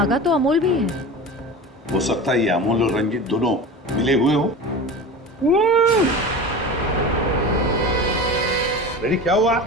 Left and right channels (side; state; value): both; normal; correlation 0.31